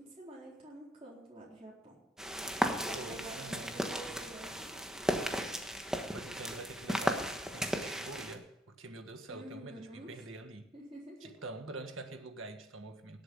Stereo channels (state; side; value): normal; both; correlation 0.70